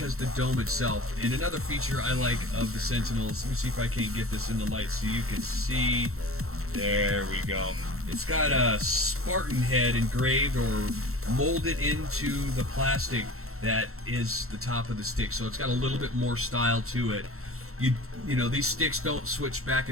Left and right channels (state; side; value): late; left; 0.63 ms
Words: the dome itself. And another feature I like of the Sentinels, let me see if I can't get this in the light so you can see. There we go. It's got a Spartan head engraved or molded into the plastic that is the top of the stick, so it's got a little bit more style to it. You know, these sticks don't switch back